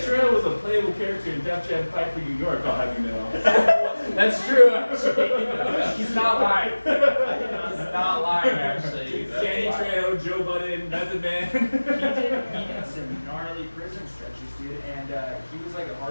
him. Trejo was a playable character in Def Jam Fight for New York, I'll have you know. That's true, actually. He's not lying. He's not lying, actually. Danny Trejo, Joe Budden, Method Man. He did some gnarly prison stretches, dude, and he was like a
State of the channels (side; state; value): both; inverted; correlation -1.00